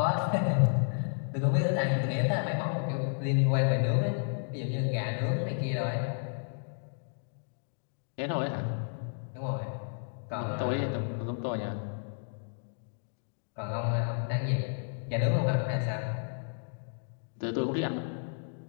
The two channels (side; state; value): right; silent; digital silence